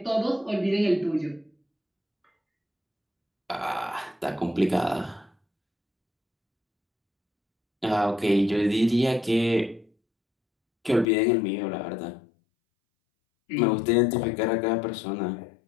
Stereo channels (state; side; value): drops out; right; at 11.1 s